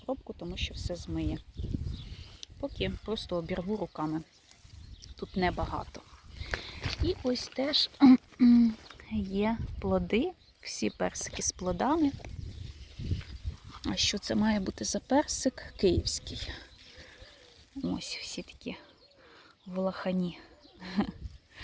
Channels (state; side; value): identical; both; correlation 1.00